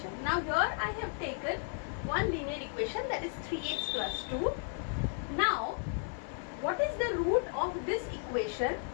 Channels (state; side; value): silent; right; 55 dB below the other